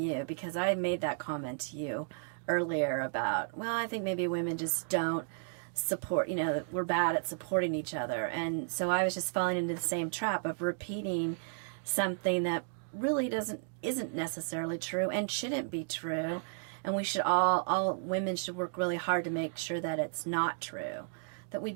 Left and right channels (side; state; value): left; silent; digital silence